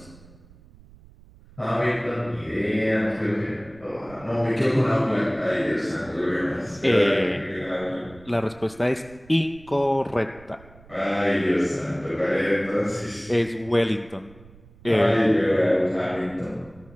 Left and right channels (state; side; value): noise; right; rumble, 24 dB below the sound